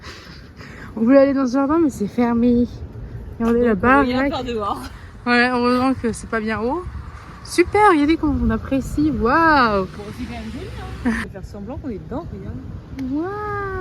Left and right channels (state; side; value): identical; both; correlation 1.00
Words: On voulait aller dans ce jardin, mais c'est fermé. Regardez là-bas. Il y a par dehors. Ouais, heureusement que c'est pas bien haut. Super, regardez comment on apprécie. Waouh! Bon, c'est quand même joli. Hein. On va faire semblant qu'on est dedans, regarde.